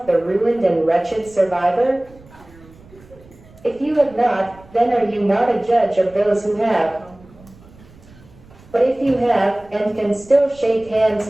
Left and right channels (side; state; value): right; noise; rumble, 24 dB below the sound